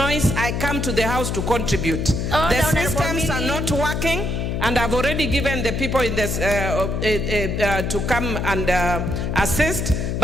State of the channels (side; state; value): left; noise; hum, 1 dB below the sound